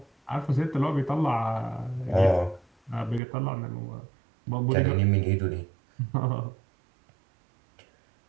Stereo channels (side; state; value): left; drops out; at 3.2 s